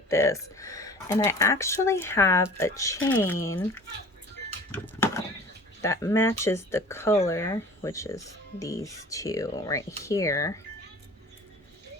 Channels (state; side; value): normal; both; correlation 0.44